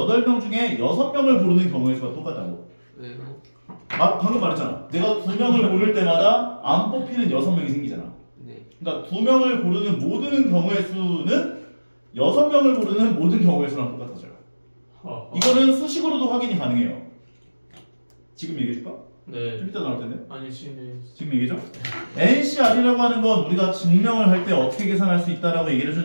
중에 6명을 고르는 경우의 수가 똑같다고. 왜요? 아, 방금 말했잖아. 내가 2명을 고를 때마다 안 뽑히는 6명이 생기잖아. 네. 그러니까 2명을 고르는 모든 경우의 수는 6명을 고르는 모든 경우의 수랑 똑같아져요. 이거는 수식으로도 확인이 가능해요. 지금 얘기해줄까? 네. 좀 이따 나올 텐데. 아니 지금 얘기죠? NCR이라고 하는 건 우리가 증명을 할 때 어떻게 계산할 수 있다라고 얘기를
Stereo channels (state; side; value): inverted; both; correlation -1.00